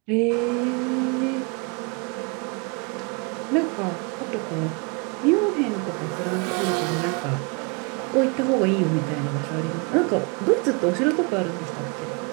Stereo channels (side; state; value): left; quieter; 32.5 dB